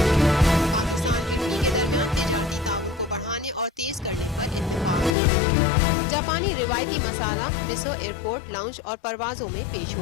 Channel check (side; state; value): right; drops out; at 5.2 s